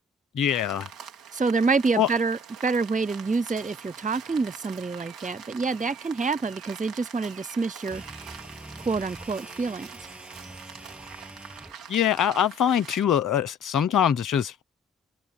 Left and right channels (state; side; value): normal; both; correlation 0.53